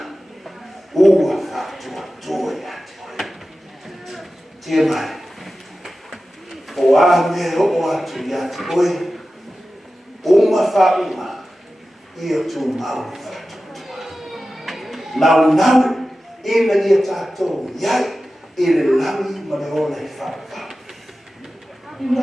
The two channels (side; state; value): both; normal; correlation 0.94